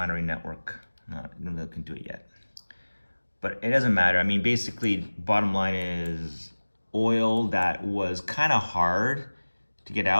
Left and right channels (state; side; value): inverted; both; correlation -1.00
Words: network. I don't know if they can do it yet. But it doesn't matter. I mean, basically, bottom line is oil that was kind of hard to get